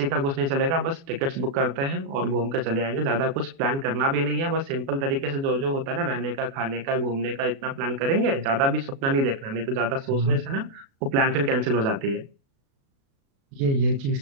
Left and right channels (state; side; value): late; left; 36 ms